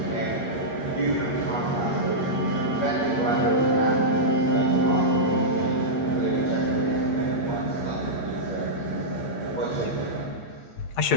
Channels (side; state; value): right; late; 8.6 ms